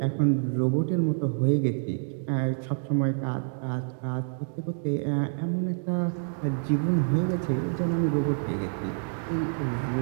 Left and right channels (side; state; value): left; silent; digital silence